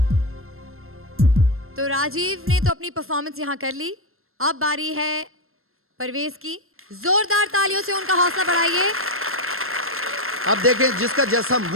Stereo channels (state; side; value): late; left; 0.62 ms